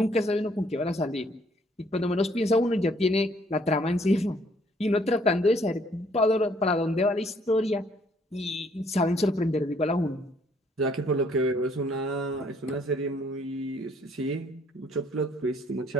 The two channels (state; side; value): normal; both; correlation 0.64